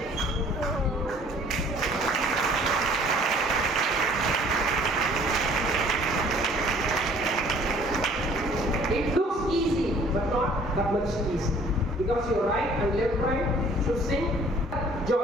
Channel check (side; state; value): both; normal; correlation 0.55